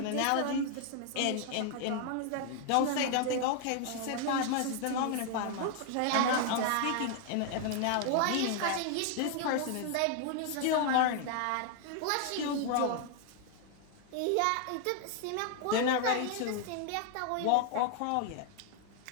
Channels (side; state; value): both; different; correlation 0.00